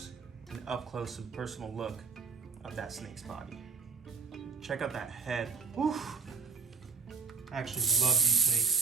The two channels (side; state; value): left; quieter; 5.0 dB